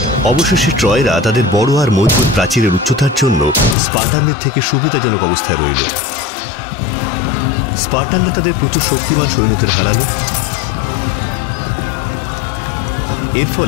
অবশেষে ট্রয়রা তাদের বড় আর মজবুত প্রাচীরের উচ্চতার জন্য স্পার্টানদের থেকে সুবিধাজনক অবস্থায় রইল। স্পার্টানরা তাদের প্রচুর শক্তিমান সৈন্যদের হারালো। এর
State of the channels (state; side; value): drops out; right; at 3.8 s